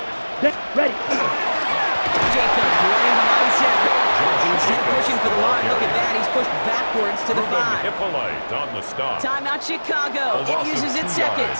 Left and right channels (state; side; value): inverted; both; correlation -1.00